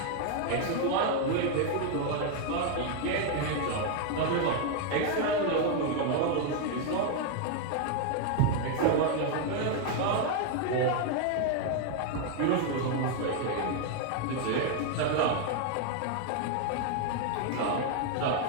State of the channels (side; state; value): both; different; correlation 0.00